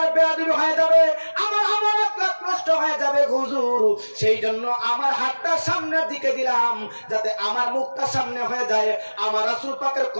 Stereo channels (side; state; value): both; inverted; correlation -1.00